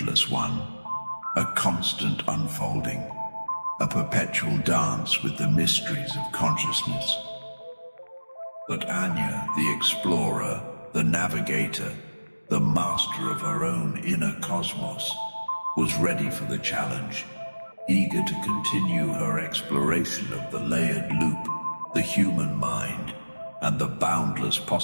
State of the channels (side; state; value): both; inverted; correlation -1.00